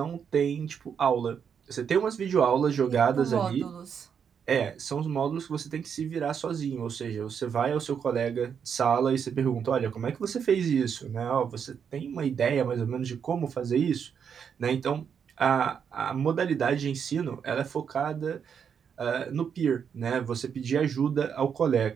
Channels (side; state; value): left; quieter; 7.3 dB